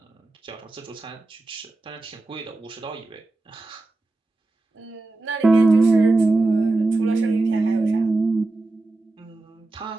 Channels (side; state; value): left; quieter; 3.1 dB